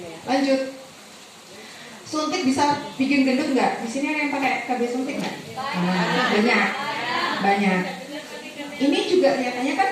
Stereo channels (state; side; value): identical; both; correlation 1.00